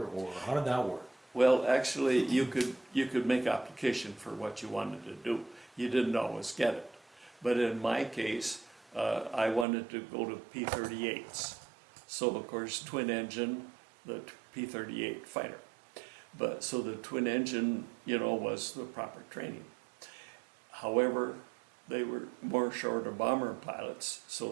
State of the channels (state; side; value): drops out; left; at 9.7 s